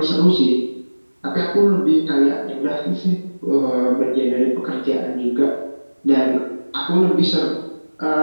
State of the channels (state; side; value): inverted; both; correlation -1.00